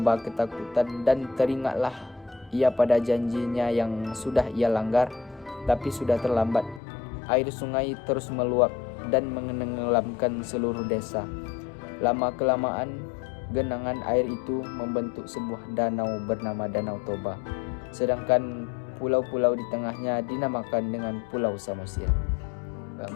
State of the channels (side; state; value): right; drops out; at 6.8 s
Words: ketakutan dan teringatlah ia pada janjinya yang sudah ia langgar, tapi sudah terlambat. Air sungai terus meluap dan menenggelamkan seluruh desa. Lama-kelamaan, genangan air itu membentuk sebuah danau bernama Danau Toba. Sedangkan pulau-pulau di tengahnya dinamakan dengan Pulau Samosir.